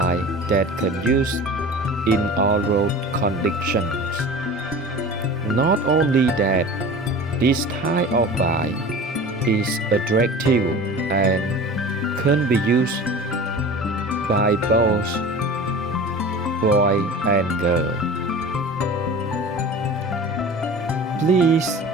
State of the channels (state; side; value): normal; both; correlation 0.37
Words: that can use in all road conditions. Not only that, this type of buy is attractive and can be used by both boy and girl. Please